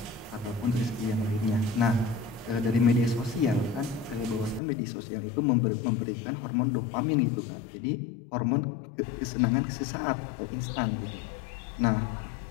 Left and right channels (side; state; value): right; drops out; at 4.6 s